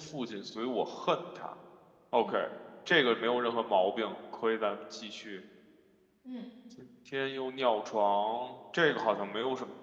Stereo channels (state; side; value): identical; both; correlation 1.00